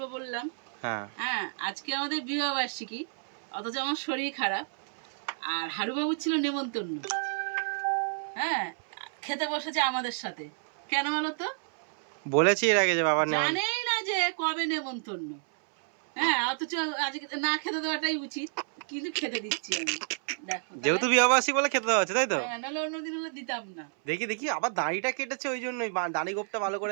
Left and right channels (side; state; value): left; silent; 58 dB below the other